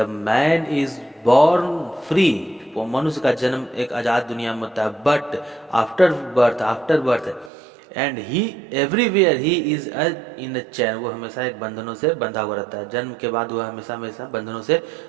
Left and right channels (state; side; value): drops out; left; at 7.5 s